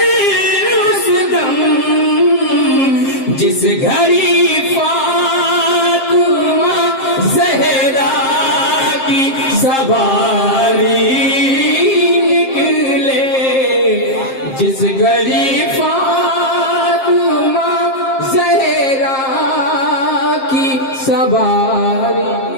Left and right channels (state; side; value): late; right; 7.5 ms